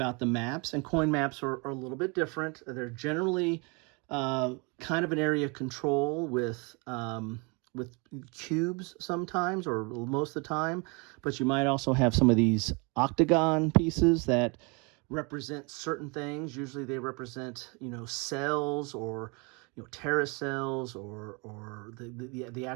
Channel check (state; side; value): quieter; left; 30.7 dB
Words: the maps, and coin maps are a little bit different. They're generally kind of an area of control with cubes sometimes, or most of the time, but you might also have some of these octagon pieces that represent certain things. Usually they represent, cells, or terrorist cells, or the